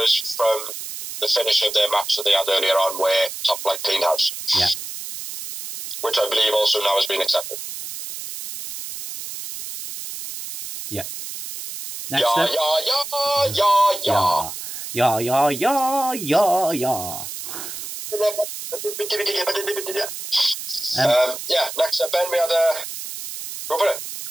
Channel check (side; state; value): right; noise; hiss, 9 dB below the sound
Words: from the finish of their match that they had earlier on where Top Flight cleaned house. Yeah. Which I believe also now has been accepted. Yeah. Next up. Yeah, next up, Ben, we had go for it.